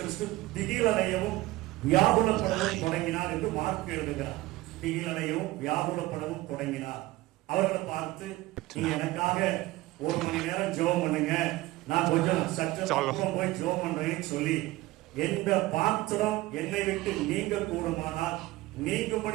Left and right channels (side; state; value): left; quieter; 18.5 dB